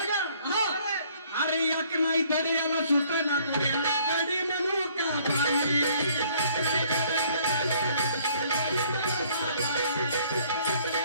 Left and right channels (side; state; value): both; inverted; correlation -0.61